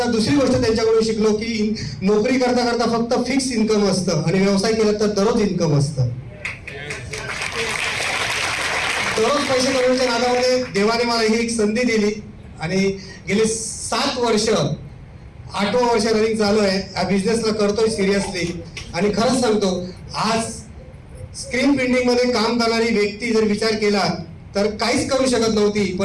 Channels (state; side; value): identical; both; correlation 1.00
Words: दुसरी गोष्ट त्यांच्याकडून शिकलो की नोकरी करता करता फक्त फिक्स इन्कम असतं आणि व्यवसाय केला तर दररोज इन्कम असतं। दररोज पैसे कमवण्याच्या नादामध्ये देवाने मला ही एक संधी दिली आणि गेली 7 वर्ष, 8वं वर्ष रनिंग चालू आहे। या बिझनेसला करतोय सिरियसली आणि खरंच सांगतो, आज स्क्रीन प्रिंटिंग मध्ये काम करणारी व्यक्ती जर विचार केला तर काहीच करू शकत नव्हती,